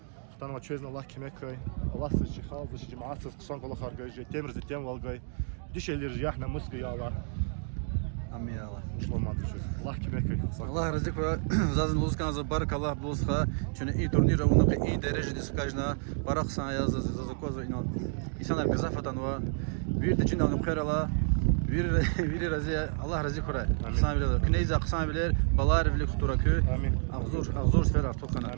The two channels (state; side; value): silent; left; 55 dB below the other